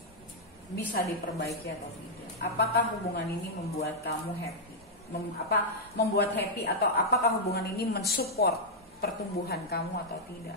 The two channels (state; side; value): normal; both; correlation -0.05